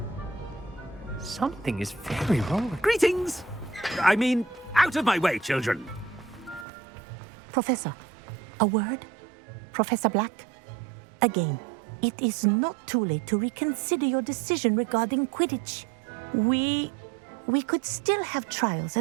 Something is very wrong. Greetings! I mean, out of my way, children. Professor, a word? Professor Black? Again, it is not too late to reconsider your decision regarding Quidditch. We could still have trials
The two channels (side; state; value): left; drops out; at 6.7 s